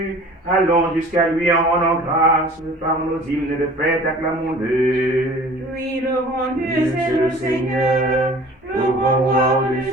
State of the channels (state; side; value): normal; both; correlation 0.46